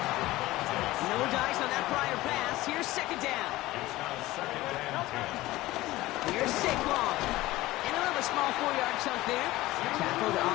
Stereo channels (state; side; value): quieter; right; 17.8 dB